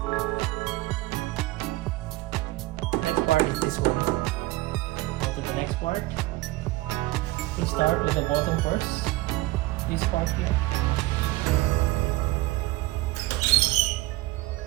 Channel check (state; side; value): quieter; left; 19.5 dB